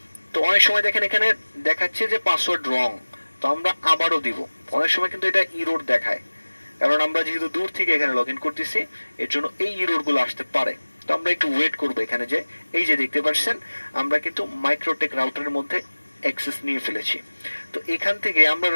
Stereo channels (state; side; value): inverted; both; correlation -1.00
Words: তো অনেক সময় দেখেন এখানে দেখাচ্ছে যে পাসওয়ার্ড রং, তো আমরা আবারও দিব। অনেক সময় কিন্তু এটা ইরোর দেখায়, কারণ আমরা যেহেতু দূর থেকে এখানে লগ ইন করতেছি এর জন্য এই ইরোর গুলো আসতে পারে। তো আমরা একটু ওয়েট করবো এখানে, যে এই যে দেখতে পাচ্ছেন আমরা কিন্তু মাইক্রোটেক রাউটারের মধ্যে অ্যাক্সেস নিয়ে ফেলেছি। তো এখান থেকে আমরা